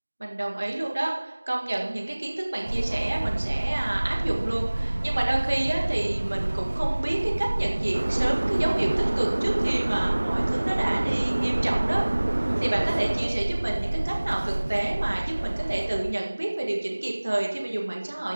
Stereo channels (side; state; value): both; inverted; correlation -1.00